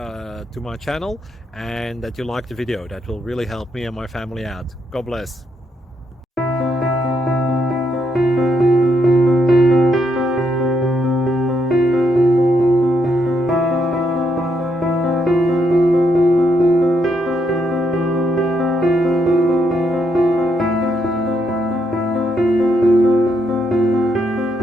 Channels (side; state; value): both; normal; correlation 0.77